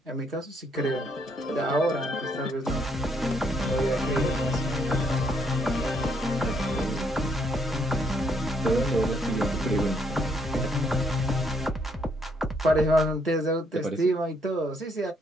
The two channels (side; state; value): both; normal; correlation 0.71